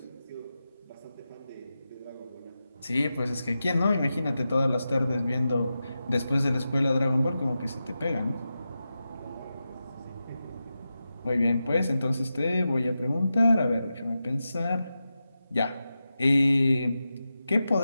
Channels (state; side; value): inverted; both; correlation -0.91